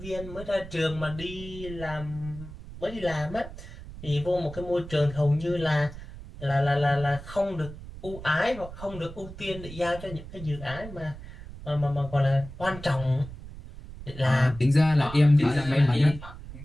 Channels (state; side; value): noise; right; rumble, 14 dB below the sound